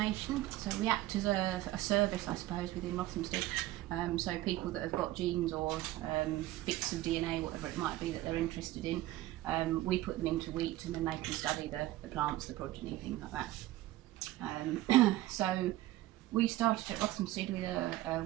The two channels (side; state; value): left; quieter; 16.1 dB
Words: So we act as a service, I suppose, within Rothamsted. So people that have got genes or bits of DNA, whatever it might be that they're interested in, we put them into wheat and then they can study the plants, the progeny, things like that. So we started at Rothamsted with a